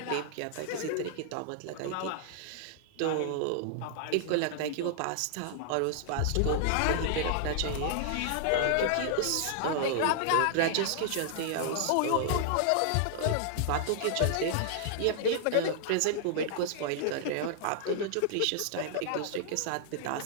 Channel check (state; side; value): different; both; correlation -0.01